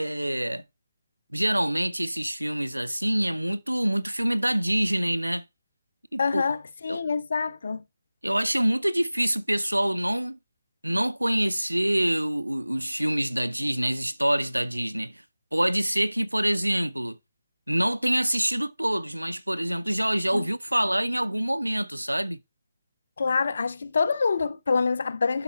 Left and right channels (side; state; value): both; inverted; correlation -0.97